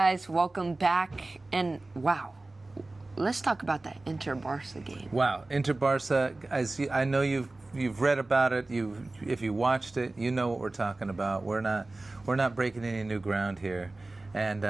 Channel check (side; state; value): left; quieter; 3.0 dB